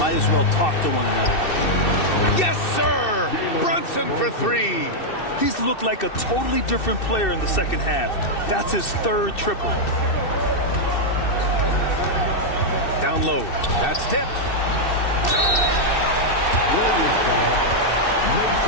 as well talk to one another. Yes, sir! Brunson for 3. He's looked like a totally different player in the second half. That's his 3rd triple. Down low. That's tipped.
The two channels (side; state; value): right; late; 2.6 ms